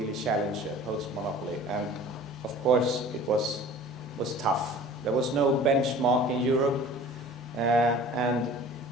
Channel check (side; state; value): both; normal; correlation 0.45